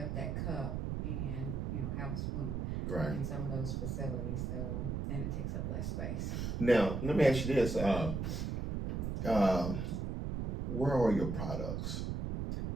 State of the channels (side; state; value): right; noise; rumble, 2 dB below the sound